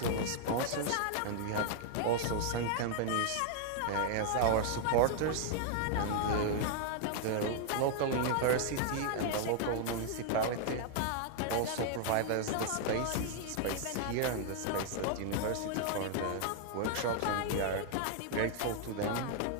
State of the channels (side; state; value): both; different; correlation 0.00